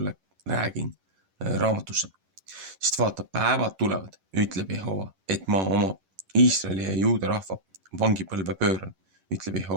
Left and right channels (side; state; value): left; late; 11 ms